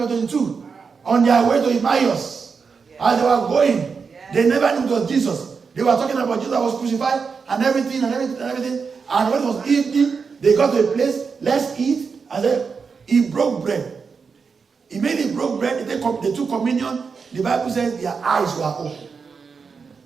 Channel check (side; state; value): left; quieter; 5.4 dB